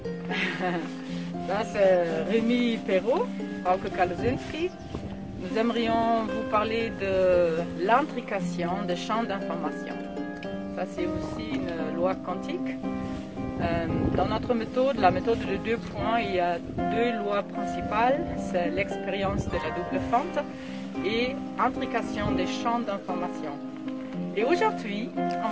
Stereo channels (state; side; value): identical; both; correlation 1.00